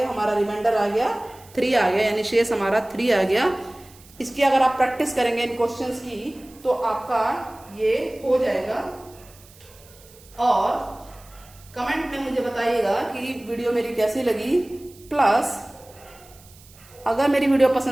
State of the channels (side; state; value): right; noise; hiss, 24 dB below the sound